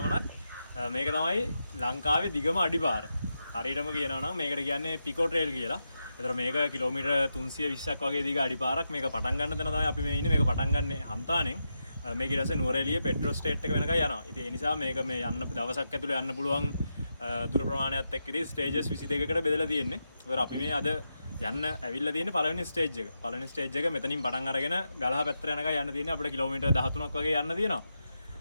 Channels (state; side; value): inverted; both; correlation -0.87